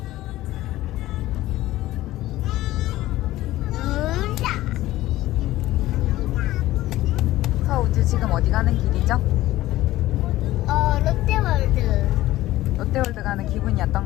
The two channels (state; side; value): quieter; right; 16.0 dB